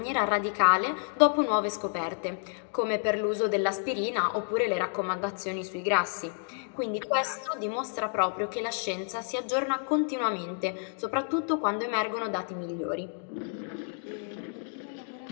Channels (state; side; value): silent; right; 58 dB below the other